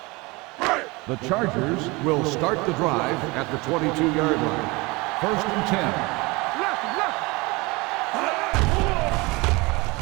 The Chargers will start the drive at the 22-yard line. First and 10.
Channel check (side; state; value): left; quieter; 24.8 dB